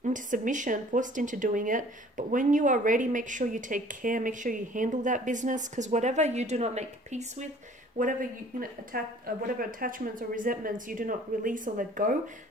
into submission, forced into doing it, but when you are ready, make sure you take care, make sure you handle that business, because whatever you do not make peace with, whatever whatever attachments or resentments you do not release or let go,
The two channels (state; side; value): normal; both; correlation 0.52